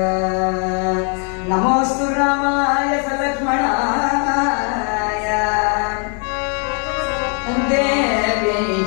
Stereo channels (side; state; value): right; quieter; 39.4 dB